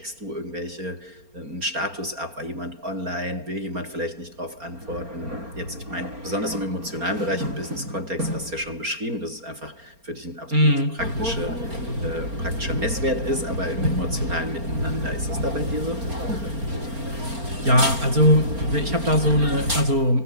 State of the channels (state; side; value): late; left; 4.3 ms